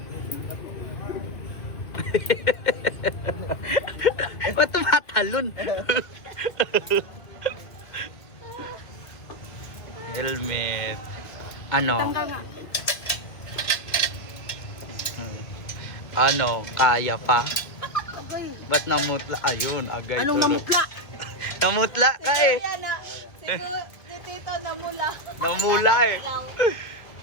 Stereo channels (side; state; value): right; late; 1.9 ms